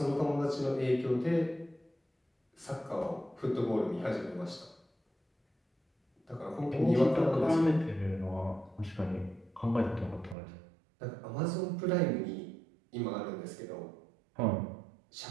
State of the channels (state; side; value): drops out; left; at 10.4 s